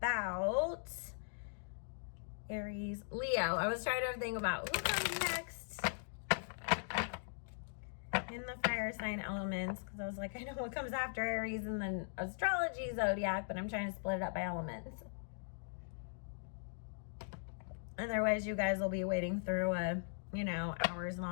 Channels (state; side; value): silent; right; digital silence